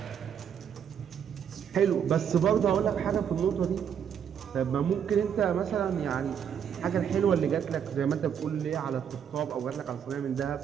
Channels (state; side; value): quieter; left; 8.2 dB